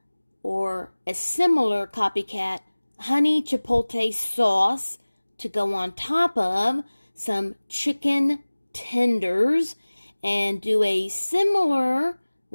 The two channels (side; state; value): both; inverted; correlation -1.00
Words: or a similar copycat honey chipotle sauce to go on top of some chicken tenders and do a similar